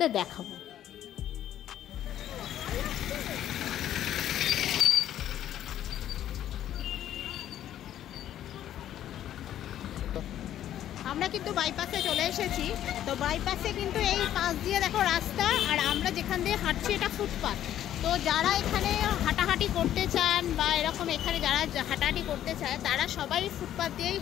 দেখাবো। আমরা কিন্তু বাইপাসে চলে এসেছি। তো বাইপাসে কিন্তু এই পাশ দিয়ে দেখো রাস্তা, আর আমরা যেখান দিয়ে হাঁটছি এটা ফুটপাথ। তো যারা এখানে হাঁটাহাঁটি করতে চান বা এরকম এখানে যারা হাঁটাহাঁটি করতে চায় তারা সবাই ফুটপাথ দিয়েই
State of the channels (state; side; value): quieter; right; 11.5 dB